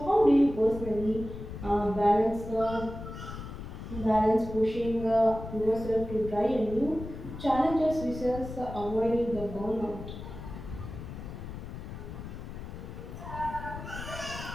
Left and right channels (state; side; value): noise; left; rumble, 10 dB below the sound